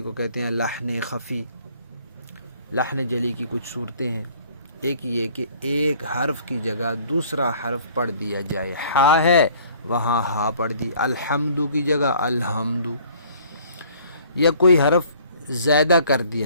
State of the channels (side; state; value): both; inverted; correlation -0.55